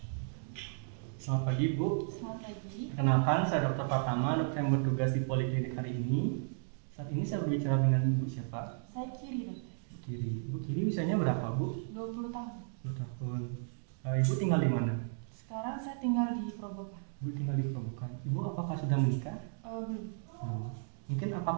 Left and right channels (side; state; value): left; silent; digital silence